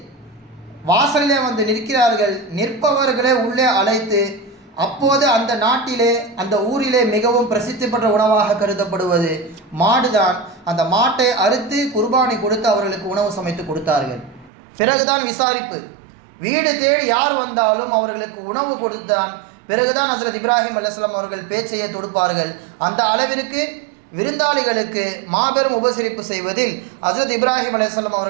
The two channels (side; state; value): left; drops out; at 14.5 s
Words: வாசலிலே வந்து நிற்கிறார்கள். நிற்பவர்களே உள்ளே அழைத்து, அப்போது அந்த நாட்டிலே அந்த ஊரிலே மிகவும் பிரசித்தி பெற்ற உணவாக கருதப்படுவது மாடுதான். அந்த மாட்டை அறுத்து குர்பானி கொடுத்து அவர்களுக்கு உணவு சமைத்து கொடுத்தார்கள். பிறகுதான் விசாரிப்பு. வீடு தேடி யார் வந்தாலும் அவர்களுக்கு உணவு கொடுத்தான் பிறகுதான் ஹஸ்ரத் இப்ராஹிம் அலைஹிஸ்ஸலாம் அவர்கள் பேச்சையை தொடுப்பார்கள். அந்த அளவிற்கு விருந்தாளிகளுக்கு மாபெரும் உபசரிப்பு செய்வதில் ஹஸ்ரத் இப்ராஹிம் அலைஹிஸ்ஸலாம்